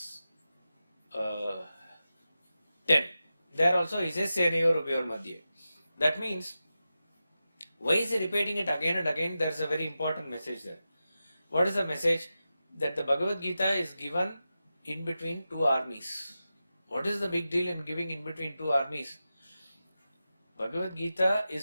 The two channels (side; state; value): both; inverted; correlation -0.92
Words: 10. There also he says Senayor Ubhayor Madhye. That means, why is he repeating it again and again? There is a very important message there. What is the message? That the Bhagavad Gita is given in between two armies. What is the big deal in giving in between two armies? Bhagavad Gita